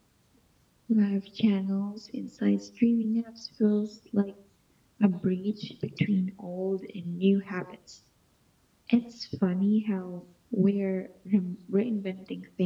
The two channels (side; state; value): both; identical; correlation 1.00